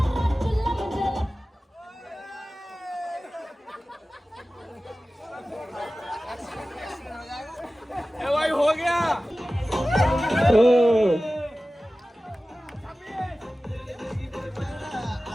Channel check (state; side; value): normal; both; correlation 0.96